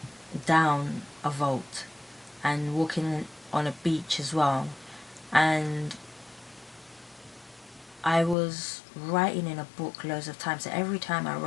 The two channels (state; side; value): drops out; right; at 8.3 s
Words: a vault and walking on a beach as well. And I was writing in a book loads of times. So every time I